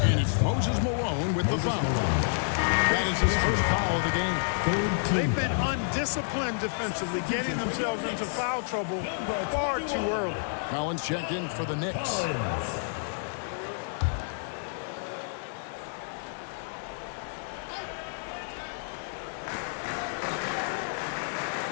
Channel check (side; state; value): right; silent; digital silence